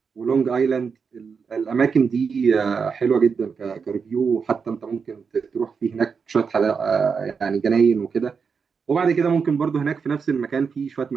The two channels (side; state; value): left; quieter; 5.7 dB